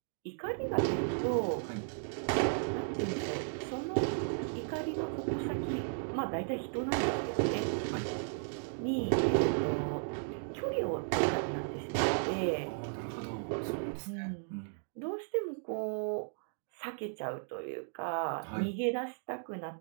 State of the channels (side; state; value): left; silent; digital silence